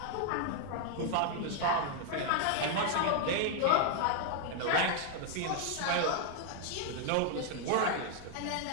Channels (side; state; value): both; different; correlation 0.00